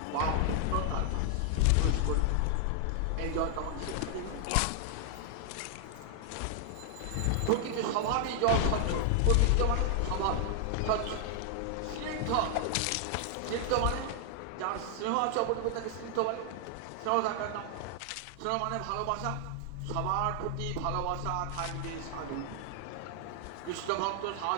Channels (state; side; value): different; both; correlation 0.00